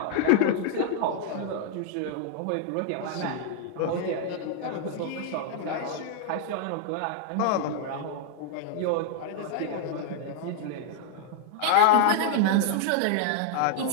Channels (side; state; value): both; different; correlation 0.00